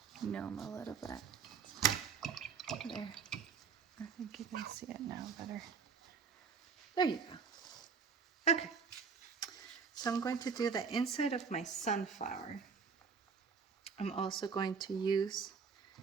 gnome a little bit. There. I think you can see it now better. There you go. Okay. So I'm going to do the inside of my sunflower. I'm also going to use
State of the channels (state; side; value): quieter; left; 5.8 dB